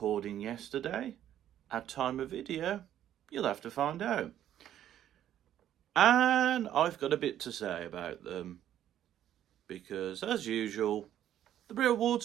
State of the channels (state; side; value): quieter; left; 11.2 dB